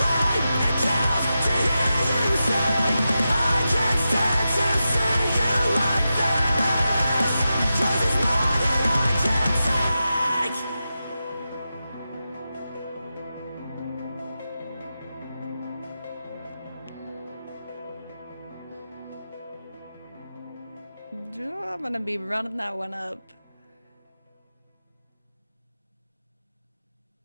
I'm gonna be running that one up.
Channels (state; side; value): inverted; both; correlation -0.91